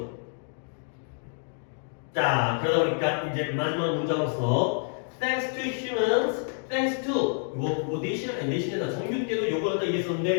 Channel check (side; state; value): right; silent; 56 dB below the other